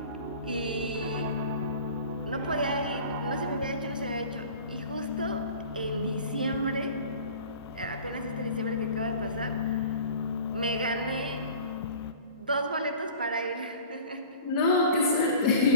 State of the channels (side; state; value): both; inverted; correlation -0.43